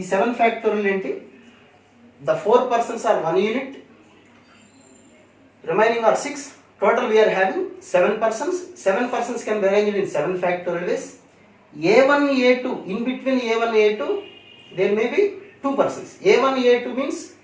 7 factorial ఏంటి? The 4 persons are 1 unit, remaining are 6. Total we are having 7 persons. 7 persons can be arranged in 7 factorial ways. A1 A2, in between A1 A2 there may be 2 persons. A1 A2 means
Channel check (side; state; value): both; identical; correlation 1.00